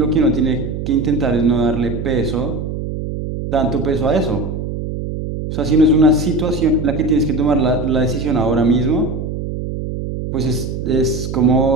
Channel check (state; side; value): noise; right; hum, 5 dB below the sound